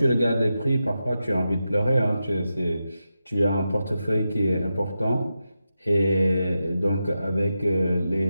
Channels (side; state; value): both; inverted; correlation -0.89